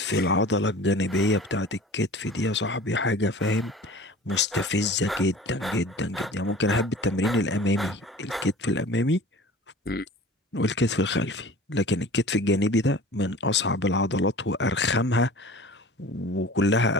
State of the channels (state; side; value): normal; both; correlation 0.42